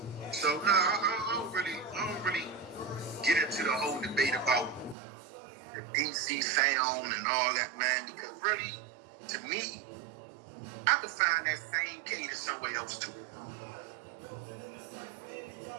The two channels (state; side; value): drops out; left; at 5.0 s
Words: So I don't really get into the whole debate about the DC sound and all that, man, because really, to me, I can find that same cadence somewhere else too.